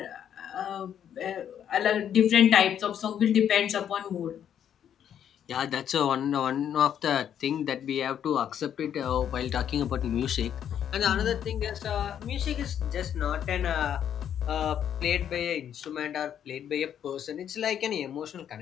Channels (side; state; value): right; quieter; 9.4 dB